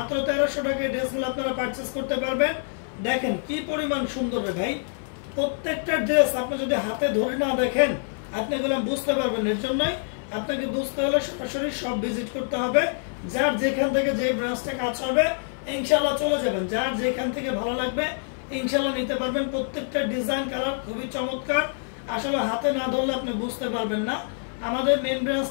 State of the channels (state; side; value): silent; right; 57 dB below the other